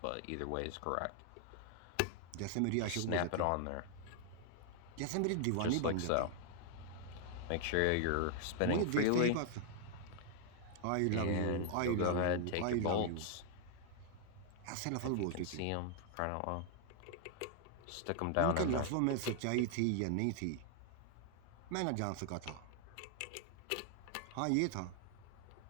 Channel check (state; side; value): different; both; correlation 0.00